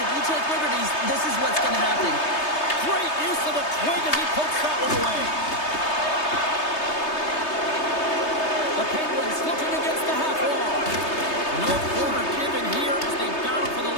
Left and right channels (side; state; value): right; late; 3.3 ms